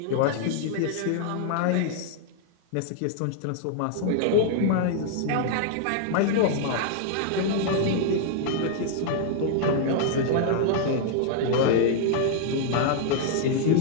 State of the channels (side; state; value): both; different; correlation -0.01